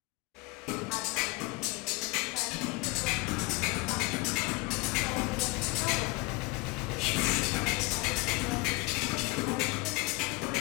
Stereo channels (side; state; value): right; quieter; 24.6 dB